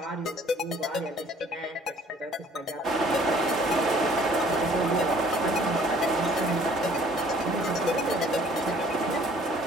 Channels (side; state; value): both; normal; correlation 0.56